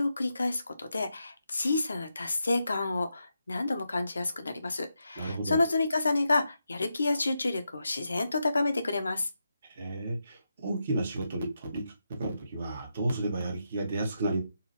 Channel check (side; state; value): both; inverted; correlation -0.85